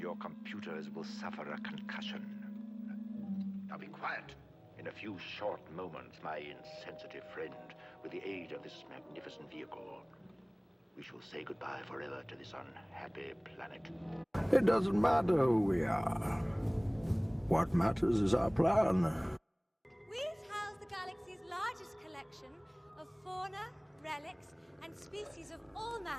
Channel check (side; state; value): both; identical; correlation 1.00